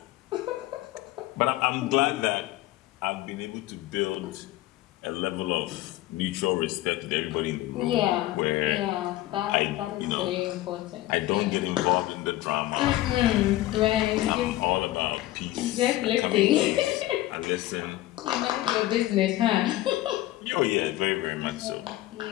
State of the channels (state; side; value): quieter; right; 16.1 dB